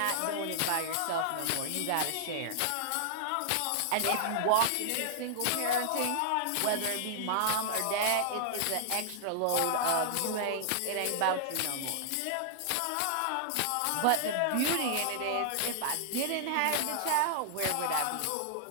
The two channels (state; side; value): different; both; correlation -0.01